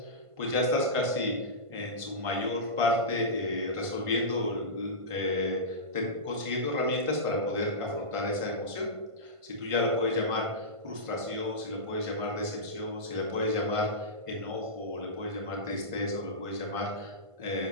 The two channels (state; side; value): late; left; 1.5 ms